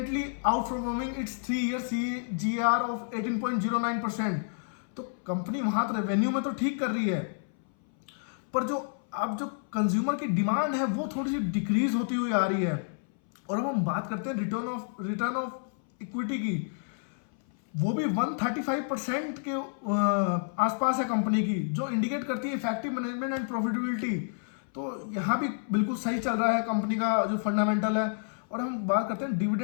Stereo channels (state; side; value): silent; right; 58 dB below the other